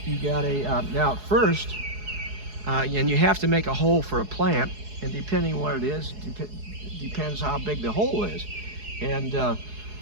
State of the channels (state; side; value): late; left; 4.7 ms